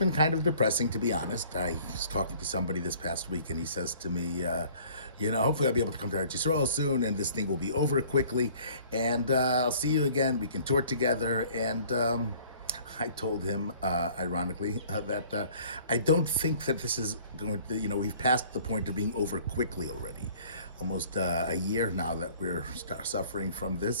kind of depressing, to be honest. I was talking to somebody this past week, and he says to me, hopefully I'll be able to come to Eretz Yisrael soon, and this thing will be over quickly, and I'll see you again. We can tour together. And I told him, ironically, that I don't think that this is going to, we've passed the point of being over quickly already. Almost a year now that we're suffering from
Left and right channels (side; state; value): both; inverted; correlation -0.53